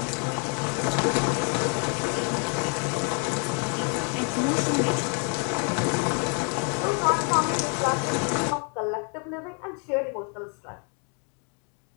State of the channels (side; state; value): right; quieter; 39.0 dB